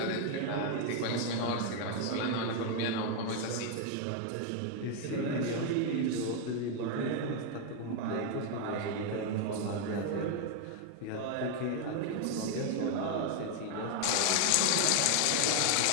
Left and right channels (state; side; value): different; both; correlation 0.00